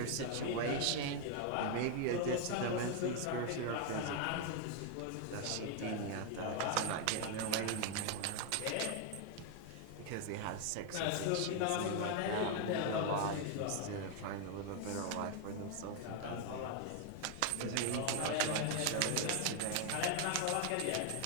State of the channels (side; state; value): both; different; correlation 0.01